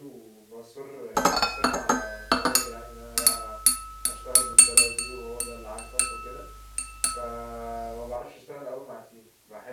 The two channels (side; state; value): both; identical; correlation 1.00